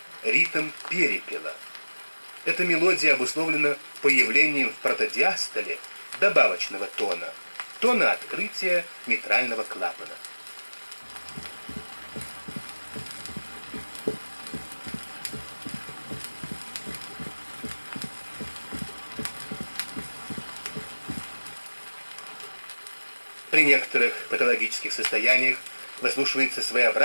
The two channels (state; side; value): inverted; both; correlation -1.00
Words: ритм перепела. Эта мелодия обусловлена появлением в протодиастоле добавочного тона, тона открытия митрального клапана. При некоторых патологических состояниях выслушивается